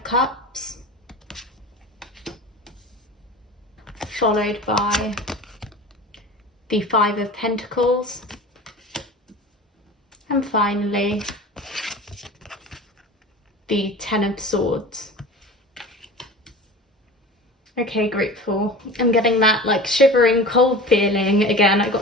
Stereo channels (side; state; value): both; normal; correlation 0.36